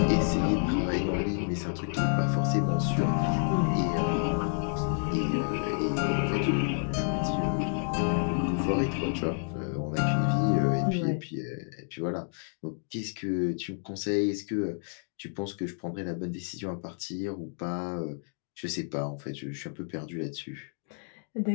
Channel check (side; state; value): right; silent; 58 dB below the other